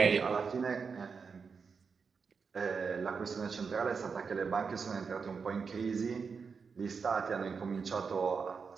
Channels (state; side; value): quieter; left; 5.5 dB